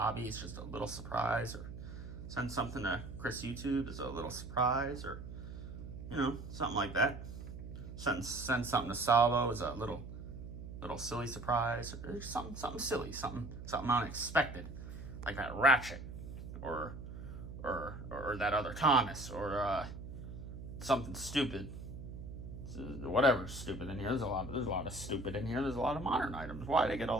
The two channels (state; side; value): noise; right; hum, 10 dB below the sound